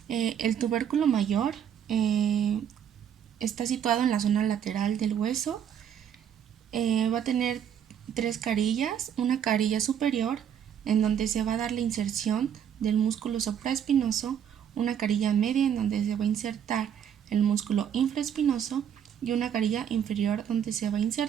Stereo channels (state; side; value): quieter; left; 8.9 dB